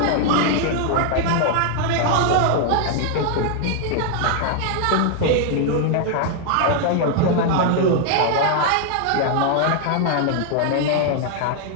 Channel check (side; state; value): both; different; correlation 0.00